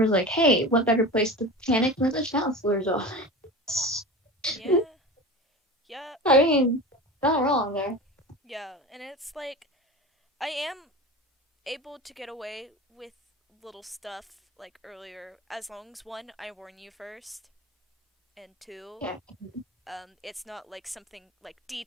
like, "Hey, what better place to panic than the counselor's office?" Yeah. Yeah. I mean, not wrong there. Yeah, and it's like I am able to get away with little stuff like earlier as long as one I warn you first and two Yeah, it's not like something like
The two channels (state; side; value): normal; both; correlation 0.31